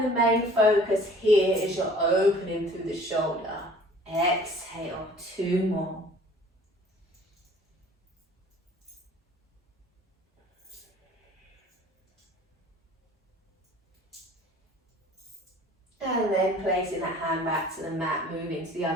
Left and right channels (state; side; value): normal; both; correlation 0.50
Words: the main focus here is you're opening through the shoulder. Exhale, 2 more. And then placing that hand back to the mat, moving to the